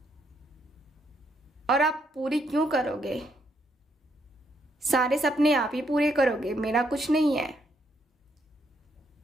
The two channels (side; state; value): both; normal; correlation 0.74